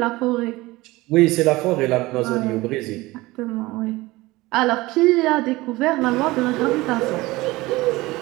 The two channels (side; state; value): left; quieter; 20.1 dB